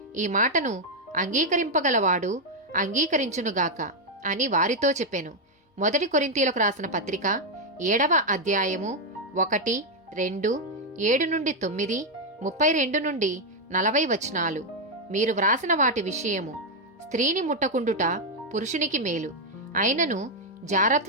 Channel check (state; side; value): normal; both; correlation 0.01